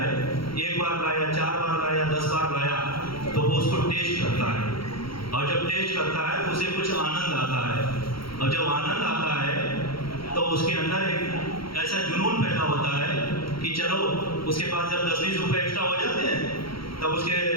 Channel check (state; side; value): late; right; 0.74 ms